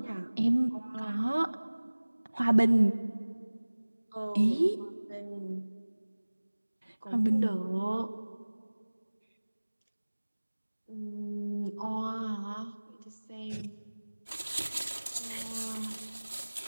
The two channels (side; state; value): both; inverted; correlation -1.00